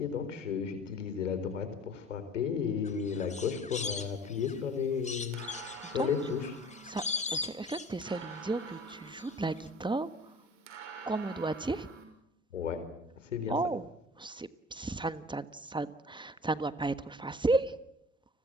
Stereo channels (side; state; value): both; normal; correlation 0.44